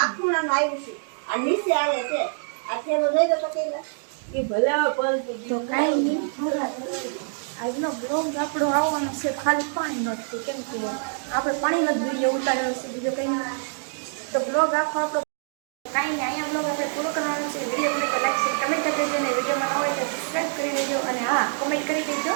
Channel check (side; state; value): left; silent; digital silence